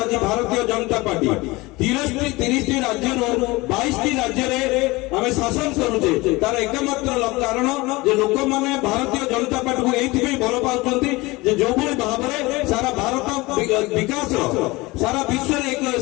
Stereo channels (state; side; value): quieter; right; 22.2 dB